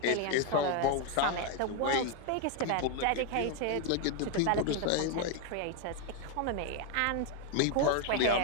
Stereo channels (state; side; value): different; both; correlation 0.01